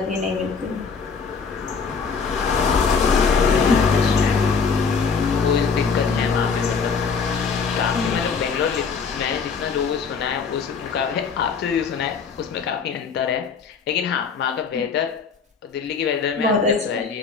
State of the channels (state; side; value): quieter; right; 5.5 dB